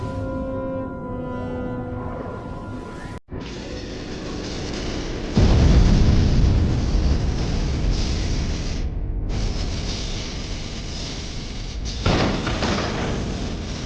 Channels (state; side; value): identical; both; correlation 1.00